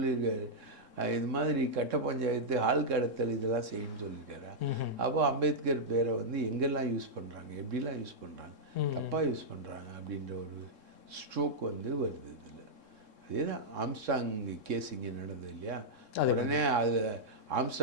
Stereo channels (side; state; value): left; late; 3.7 ms